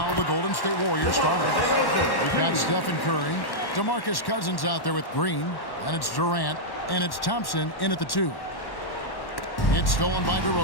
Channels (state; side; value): late; right; 1.1 ms